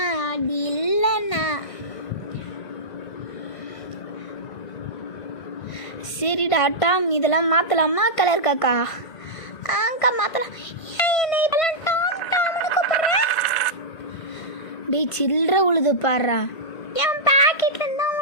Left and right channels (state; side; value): late; right; 1.5 ms